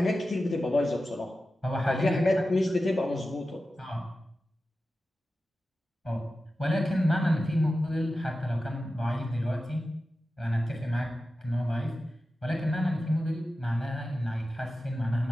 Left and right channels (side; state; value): both; normal; correlation 0.93